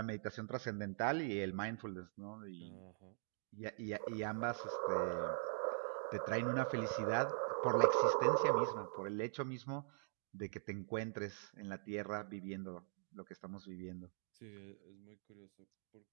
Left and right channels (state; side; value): silent; left; digital silence